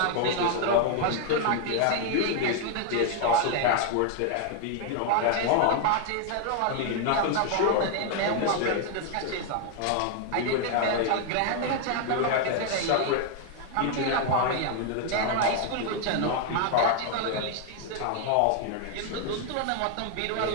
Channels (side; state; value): both; different; correlation 0.00